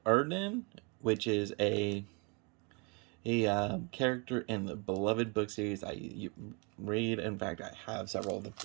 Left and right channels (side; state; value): left; quieter; 31.3 dB